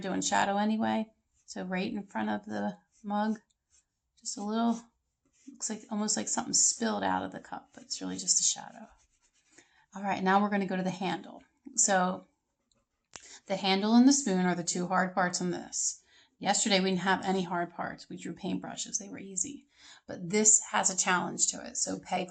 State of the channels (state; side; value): identical; both; correlation 1.00